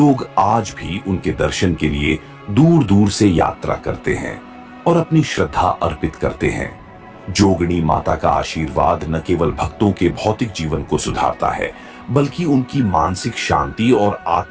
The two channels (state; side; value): identical; both; correlation 1.00